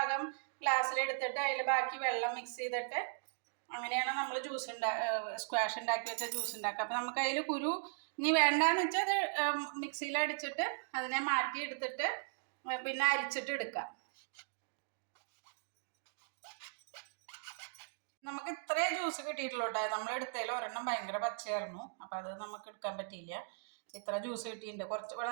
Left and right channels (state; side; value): silent; left; digital silence